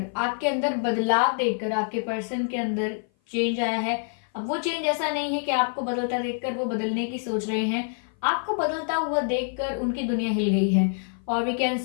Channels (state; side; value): silent; right; 56 dB below the other